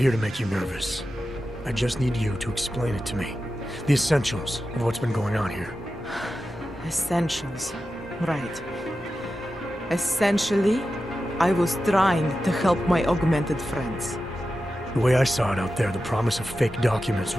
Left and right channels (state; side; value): normal; both; correlation 0.92